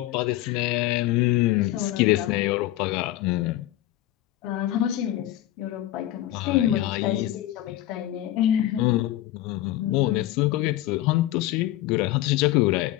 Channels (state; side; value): quieter; right; 14.8 dB